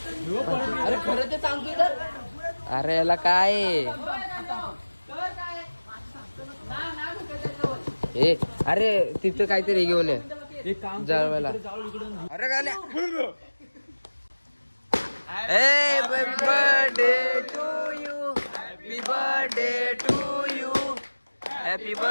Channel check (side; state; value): both; inverted; correlation -1.00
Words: अरे खरं ते सांगतोय तर अरे याला काय आहे? ए अरे तिथं काहीतरी घेऊन ये एक काम जळवायला अरे गाण्या happy birthday to you happy birthday to you happy